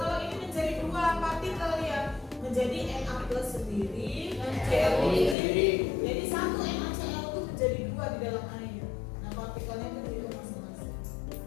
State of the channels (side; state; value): right; drops out; at 5.4 s